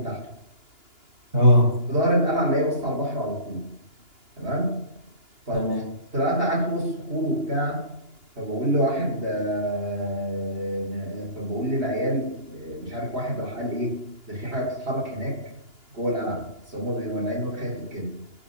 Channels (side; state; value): left; late; 2.9 ms